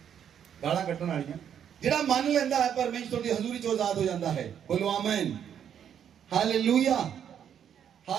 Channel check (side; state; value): left; quieter; 8.9 dB